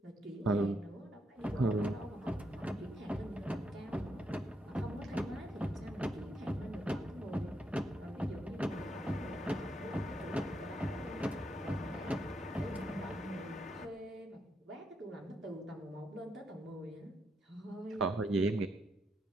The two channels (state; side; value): normal; both; correlation 0.79